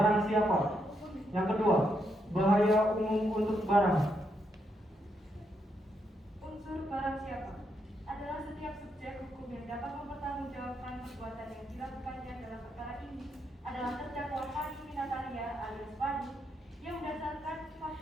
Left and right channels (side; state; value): both; normal; correlation 0.79